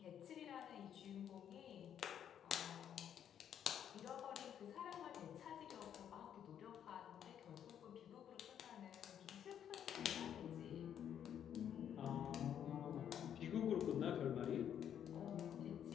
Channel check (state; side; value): quieter; right; 9.4 dB